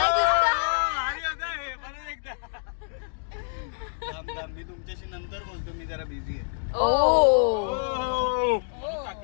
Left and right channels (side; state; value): right; silent; digital silence